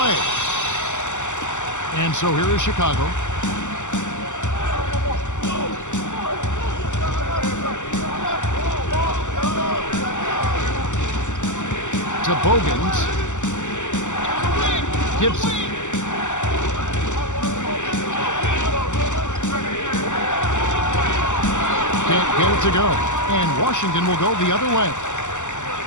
And so here is Chicago. To Bogans. Gibson. Can't get it to go. And Washington will go the other way.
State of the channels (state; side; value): late; right; 0.84 ms